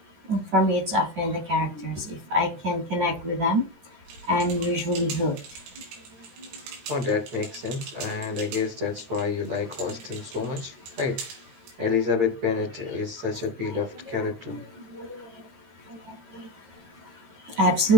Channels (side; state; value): left; late; 13 ms